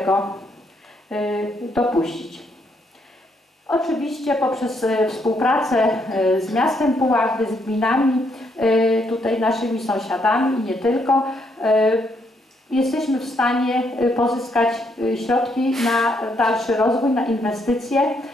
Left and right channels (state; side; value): normal; both; correlation 0.74